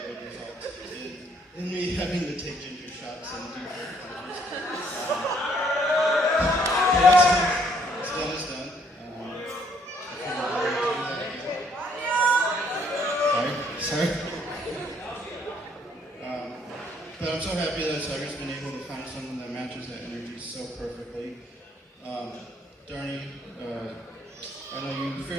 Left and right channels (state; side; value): normal; both; correlation 0.66